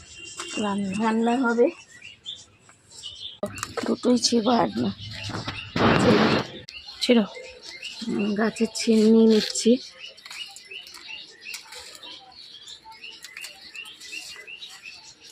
রান্না হবে। দুটোই ছিবা আর না ছিল। গাছের ছিম নিয়ে নিচ্ছি।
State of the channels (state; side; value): identical; both; correlation 1.00